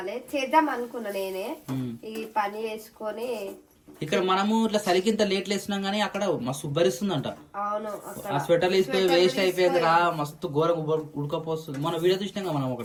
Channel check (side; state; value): both; identical; correlation 1.00